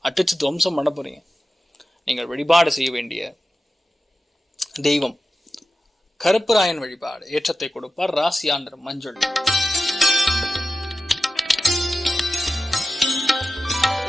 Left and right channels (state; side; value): normal; both; correlation 0.92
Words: அடிச்சு துவம்சம் பண்ண போறீங்க. நீங்கள் வழிபாடு செய்ய வேண்டிய தெய்வம் கருப்புராயன் வழிபாடு ஏற்றத்தை கொடுப்பார். ராசியா நிறம் மஞ்சள்.